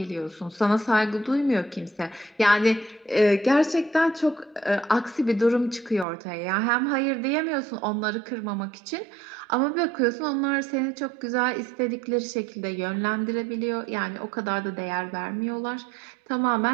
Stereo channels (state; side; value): drops out; left; at 6.1 s